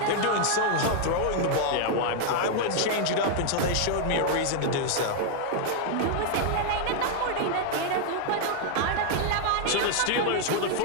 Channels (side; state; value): both; different; correlation 0.00